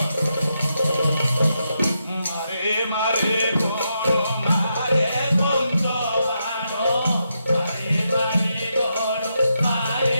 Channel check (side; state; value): both; inverted; correlation -0.83